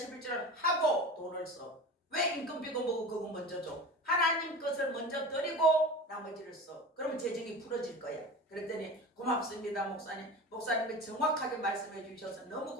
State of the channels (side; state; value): both; normal; correlation 0.33